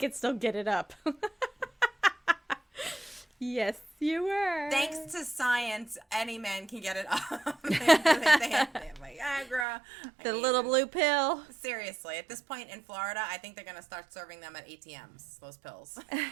still get it up. Yes, you were. Thanks to science, any man can get it up. they have Viagra. The little blue pill. Seriously, at this point in Florida, I think they're going to start serving them at ATMs, those pills.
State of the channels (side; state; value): left; drops out; at 9.7 s